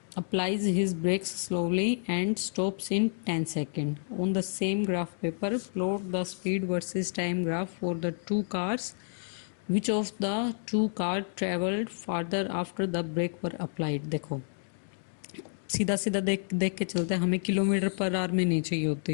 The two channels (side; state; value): right; silent; digital silence